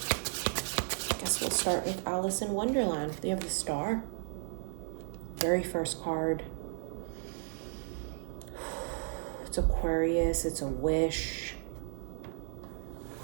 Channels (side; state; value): left; silent; digital silence